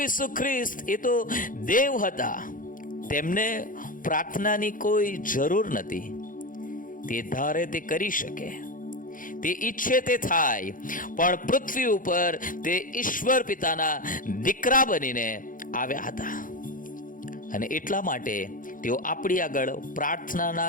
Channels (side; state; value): right; late; 0.39 ms